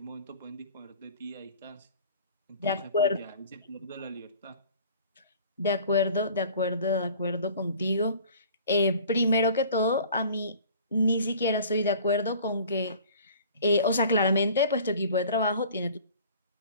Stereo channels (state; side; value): inverted; both; correlation -0.47